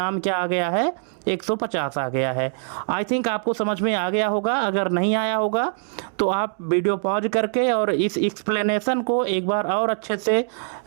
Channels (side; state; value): left; silent; 63 dB below the other